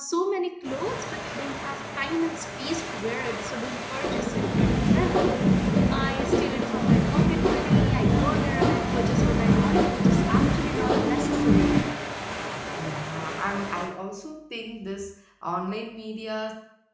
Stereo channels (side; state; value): both; identical; correlation 1.00